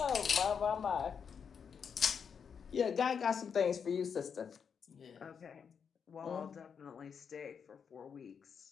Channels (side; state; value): right; quieter; 6.8 dB